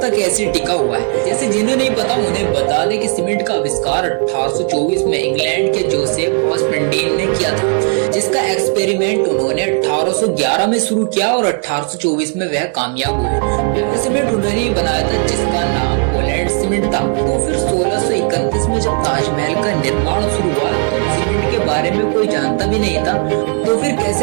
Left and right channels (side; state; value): left; quieter; 39.7 dB